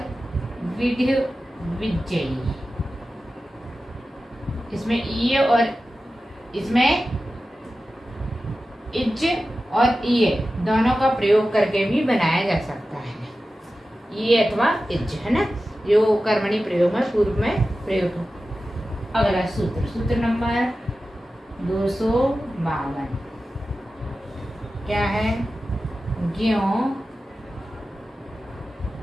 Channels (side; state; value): both; normal; correlation 0.94